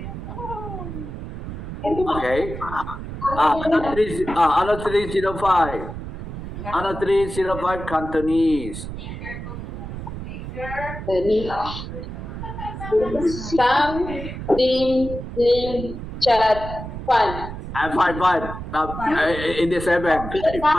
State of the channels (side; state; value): right; noise; rumble, 8 dB below the sound